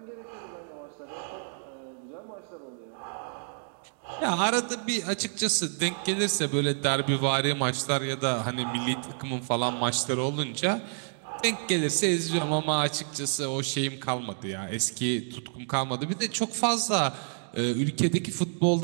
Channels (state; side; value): silent; left; digital silence